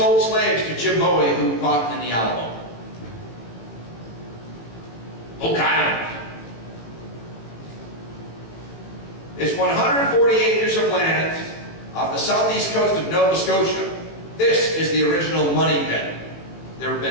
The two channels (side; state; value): right; late; 18 ms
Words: slaves to Jim Bowie, who fought in the Alamo. Oak Island. It's 140 acres of land off the southeast coast of Nova Scotia. This is the original money pit. There have